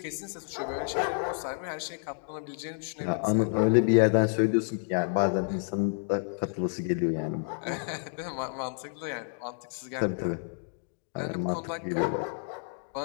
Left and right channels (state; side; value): silent; right; digital silence